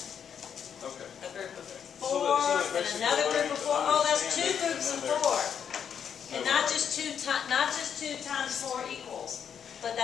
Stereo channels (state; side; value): quieter; right; 7.9 dB